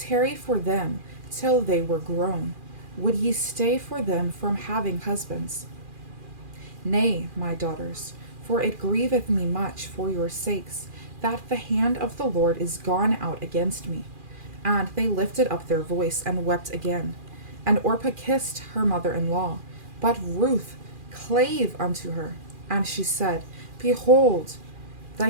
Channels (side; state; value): left; late; 2.4 ms